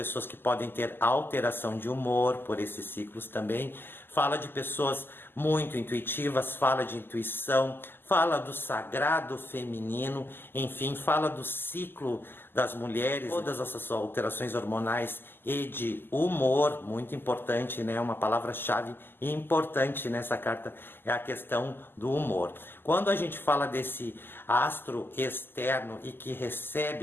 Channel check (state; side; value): late; right; 0.099 ms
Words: que podem ter alteração de humor por esses ciclos também, fala de pessoas muito intuitivas, fala de intuição, fala do sagrado feminino, enfim, fala do ciclo das mulheres, todas essas alterações hormonais e de humor, muito importante, né? Uma palavra-chave importante nessa carta é a questão do humor. Quando a gente fala desse astro externo e que